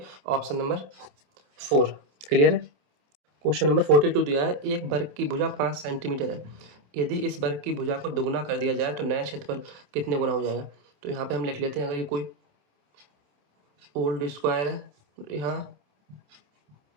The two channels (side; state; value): left; late; 28 ms